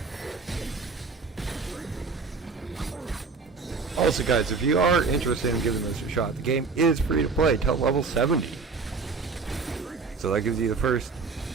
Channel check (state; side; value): quieter; left; 4.6 dB